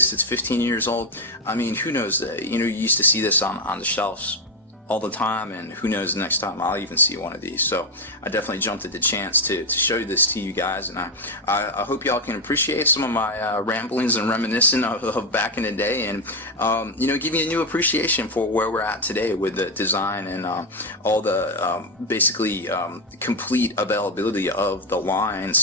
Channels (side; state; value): both; normal; correlation 0.07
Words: that's 15 years old, I mean, who knows, you know, you used to see this on the shelves all the time, and who knows, the next time I'll even see one of these. So I definitely jumped at the chance to show this to you guys, and I hope y'all can appreciate some of my ramblings and reminiscing of back in the day, and you know, give you a new appreciation for where we're at today with the design and all the basically complete availability of the